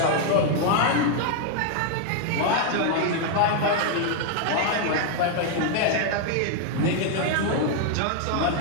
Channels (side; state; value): both; different; correlation 0.00